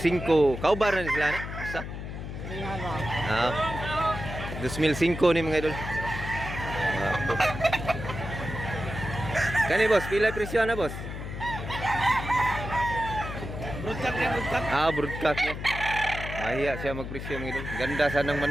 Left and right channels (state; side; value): noise; left; hum, 8 dB below the sound